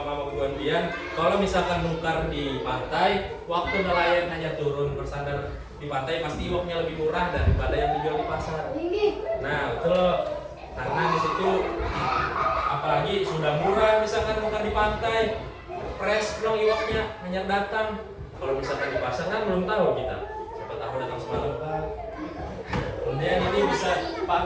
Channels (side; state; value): both; identical; correlation 1.00